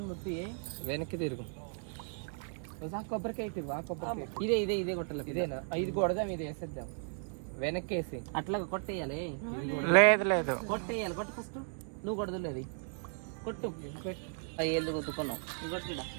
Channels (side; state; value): left; silent; 54 dB below the other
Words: ముట్టి వెనక్కి తిరుగు కొబ్బరికాయ తిరుగు ఆ కొబ్బరికాయ ఇదే ఇదే ఇదే కొట్టాలి ఇదేనా ఇది కొడదాం ఇది వేసేద్దాం వెనక్కి వేసి అట్లా కొట్టేయాలి లేదు కొట్టేయాలి కొట్టు ఫస్ట్ నువ్వు కొడదులేదు కొట్టు అయ్యేళ్ళు కొట్టుకున్నావు కొట్టిడా